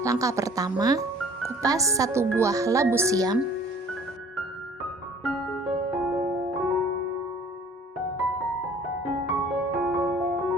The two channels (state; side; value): normal; both; correlation 0.51